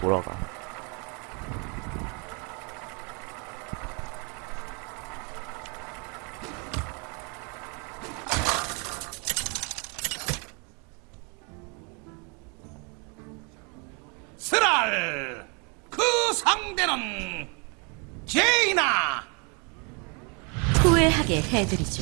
스랄 그 상대는 제이나. 후회하게 해드리죠.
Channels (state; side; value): quieter; left; 33.9 dB